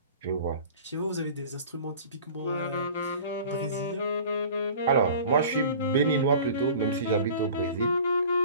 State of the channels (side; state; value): both; inverted; correlation -0.43